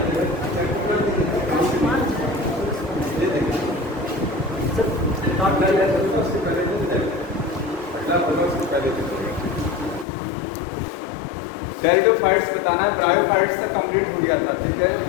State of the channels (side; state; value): right; drops out; at 10.1 s